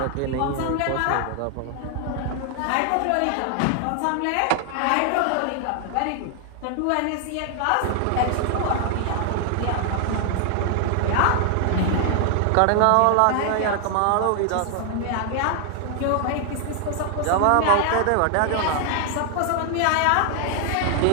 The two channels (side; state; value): both; different; correlation 0.00